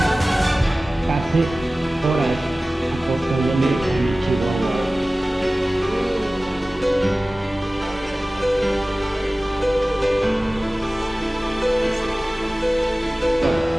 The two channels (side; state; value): both; normal; correlation 0.97